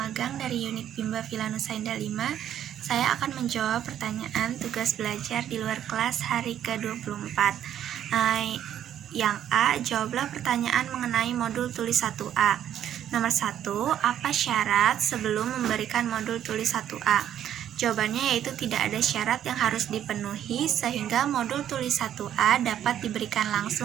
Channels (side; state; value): left; quieter; 10.6 dB